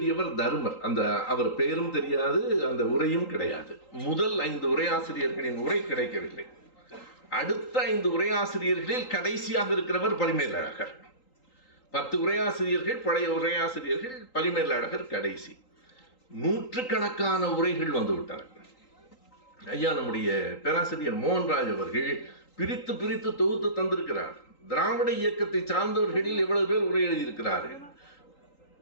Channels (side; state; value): right; late; 3.8 ms